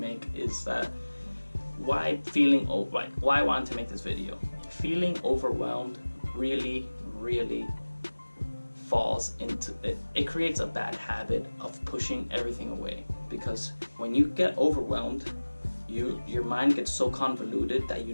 is that why I wanted to make this video. Feeling overwhelmed really falls into it. It creates a bad habit of pushing everything away, because when you get overwhelmed, your mind gets so convoluted that you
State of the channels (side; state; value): both; inverted; correlation -1.00